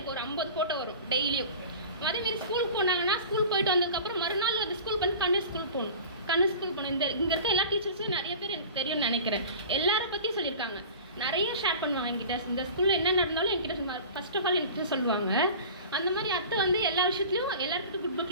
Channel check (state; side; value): inverted; both; correlation -0.38